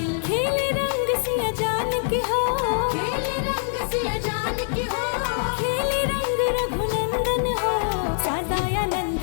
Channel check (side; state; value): right; silent; digital silence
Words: खेले रंग सिया जान के हो, खेले रंग सिया जान की हो। खेले रंग रघुनंदन हो। सदानंद